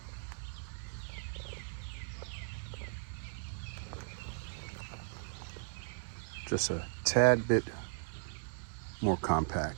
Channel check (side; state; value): left; silent; digital silence